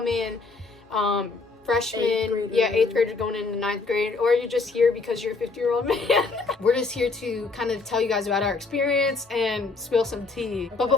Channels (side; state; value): right; quieter; 4.0 dB